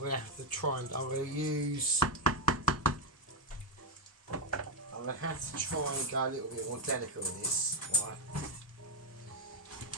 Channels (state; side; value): normal; both; correlation 0.03